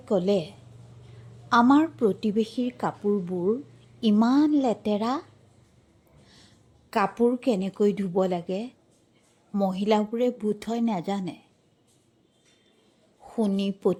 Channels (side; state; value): both; identical; correlation 1.00